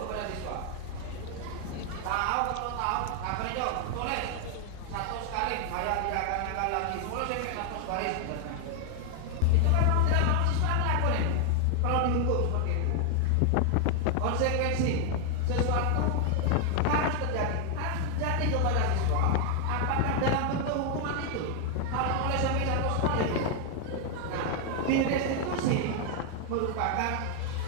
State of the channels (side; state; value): both; different; correlation 0.00